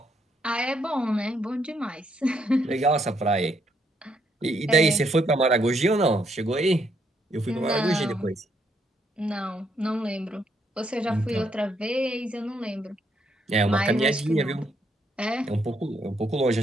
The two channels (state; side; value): normal; both; correlation 0.73